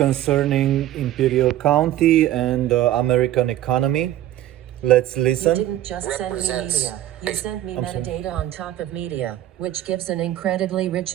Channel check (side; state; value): left; quieter; 13.2 dB